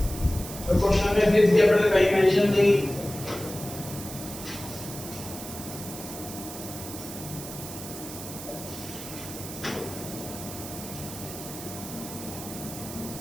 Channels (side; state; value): right; noise; hiss, 11 dB below the sound